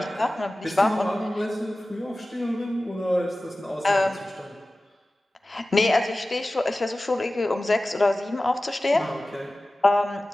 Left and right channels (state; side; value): normal; both; correlation 0.96